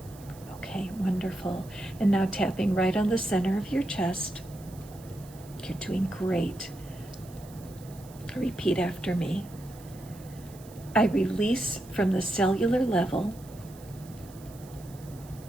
Okay, wonderful. And now tapping right on the center of your chest. You're doing great. Repeat after me. I release from the cellular level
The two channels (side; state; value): right; noise; hiss, 22 dB below the sound